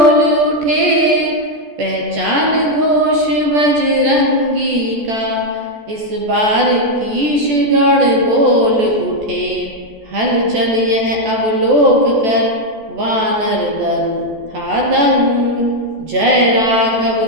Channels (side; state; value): left; late; 14 ms